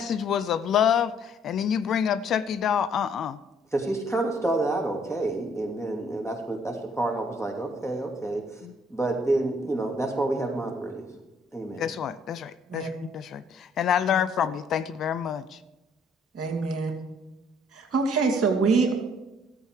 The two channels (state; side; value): normal; both; correlation 0.63